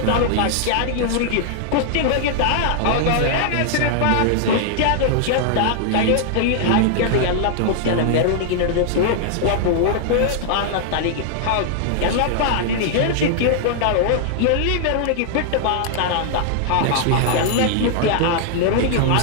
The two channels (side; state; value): both; different; correlation -0.01